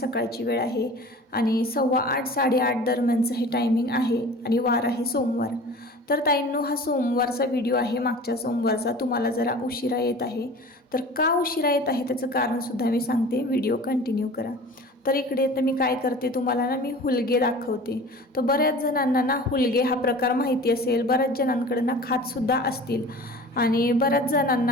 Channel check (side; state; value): both; normal; correlation 0.40